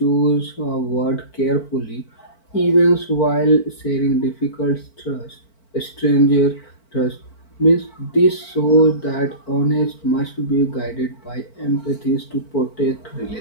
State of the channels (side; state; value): right; late; 4.5 ms